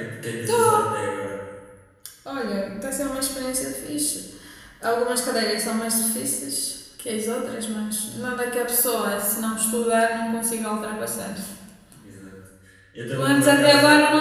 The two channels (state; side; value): identical; both; correlation 1.00